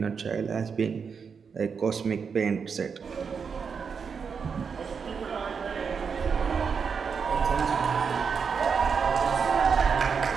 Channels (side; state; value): left; quieter; 6.0 dB